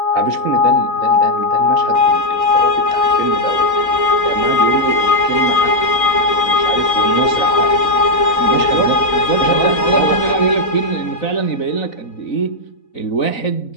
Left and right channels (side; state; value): right; late; 4.0 ms